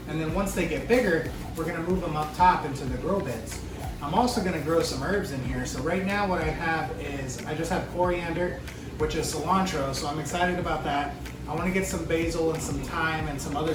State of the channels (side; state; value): both; identical; correlation 1.00